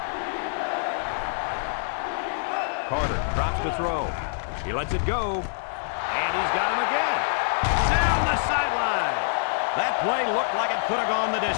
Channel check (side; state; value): right; silent; digital silence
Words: Carter drops to throw. He lets it go. And he's got him again. Down the sideline. That play looked like it could have gone the